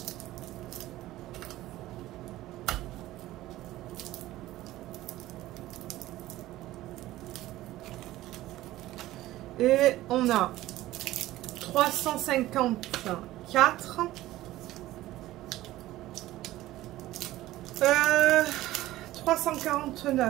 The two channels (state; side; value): quieter; left; 16.0 dB